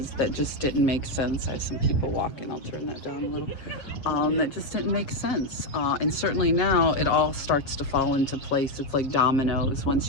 that just didn't make sense. I have some people walking, I'll turn that down a little. That just didn't make sense. And certainly now it all starts to fall into place. It's like dominoes. Once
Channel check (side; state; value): right; late; 7.5 ms